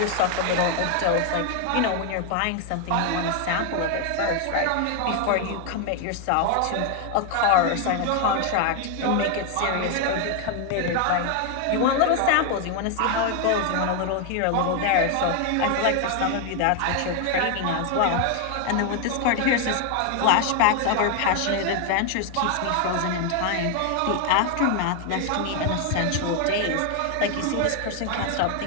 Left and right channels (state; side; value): different; both; correlation 0.01